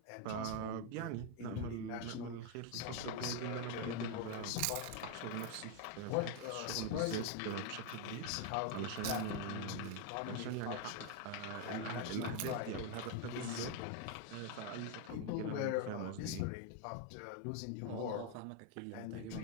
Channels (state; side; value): different; both; correlation 0.01